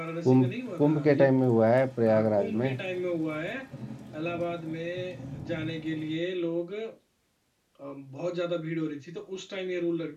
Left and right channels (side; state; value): both; identical; correlation 1.00